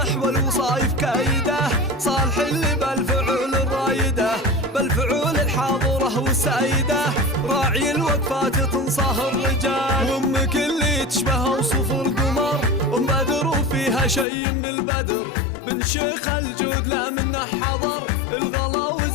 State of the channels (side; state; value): right; drops out; at 14.2 s